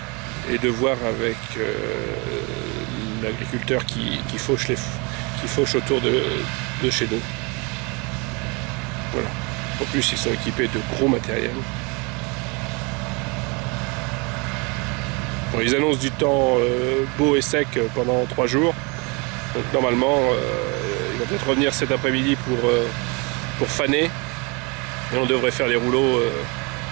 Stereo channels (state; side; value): quieter; left; 29.9 dB